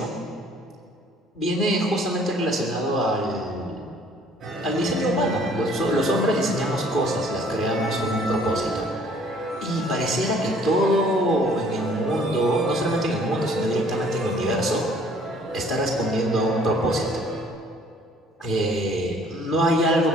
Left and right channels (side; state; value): both; normal; correlation 0.57